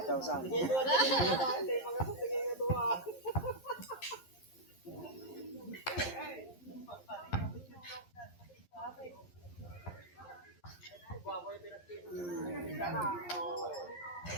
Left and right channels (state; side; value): late; right; 11 ms